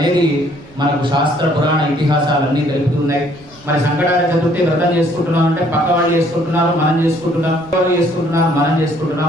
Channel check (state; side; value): noise; right; rumble, 25 dB below the sound